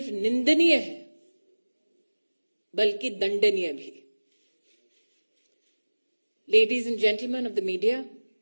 निंदनीय है बल्कि दंडनीय भी। Ladies and gentlemen of the media,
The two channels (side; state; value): both; inverted; correlation -1.00